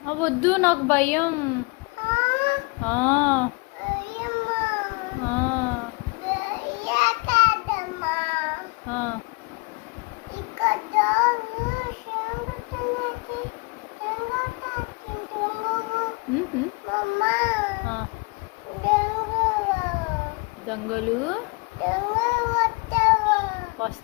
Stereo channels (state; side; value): quieter; right; 28.5 dB